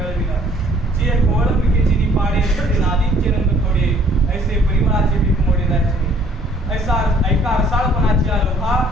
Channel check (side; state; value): both; normal; correlation 0.59